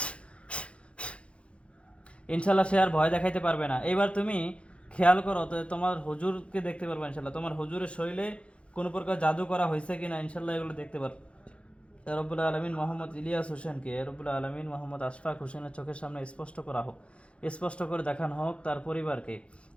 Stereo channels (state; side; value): late; right; 0.060 ms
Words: ইনশাল্লাহ সে আর ভয় দেখাইতে পারবে না। এবার তুমি খেয়াল করো তো, তোমার হুজুরকে দেখতে পারবে ইনশাল্লাহ, তোমার হুজুরের শরীরে কোনো প্রকার জাদু করা হয়েছে কিনা ইনশাল্লাহ এগুলো দেখতে পারবে। রব্বুল আলমিন মোহাম্মদ ইলিয়াস হোসেনকে রব্বুল আলমিন মোহাম্মদ আশফাক হোসেনের চোখের সামনে স্পষ্ট করা হোক, স্পষ্ট করে দেখানো হোক তার পরিবারকে।